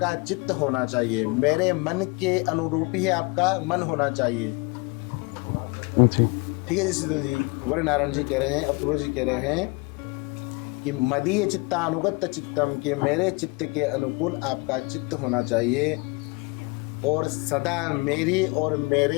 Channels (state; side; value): quieter; right; 28.0 dB